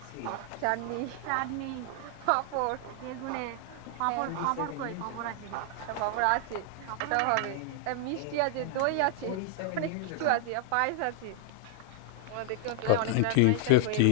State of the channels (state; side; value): different; both; correlation 0.00